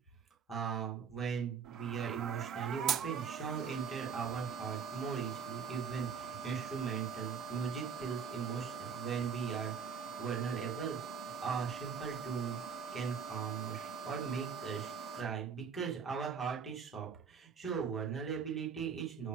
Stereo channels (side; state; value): left; quieter; 6.4 dB